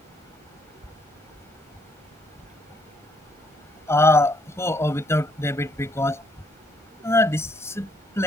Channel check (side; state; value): both; normal; correlation 0.71